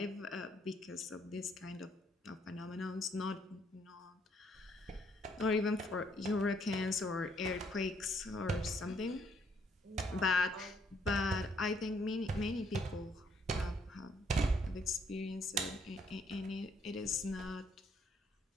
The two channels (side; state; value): both; normal; correlation 0.69